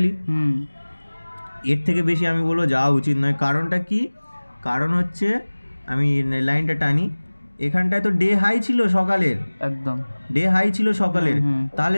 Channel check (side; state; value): both; inverted; correlation -1.00